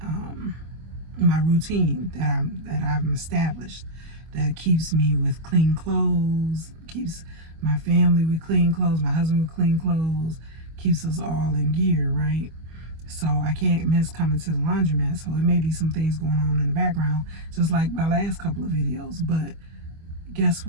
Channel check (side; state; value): left; late; 25 ms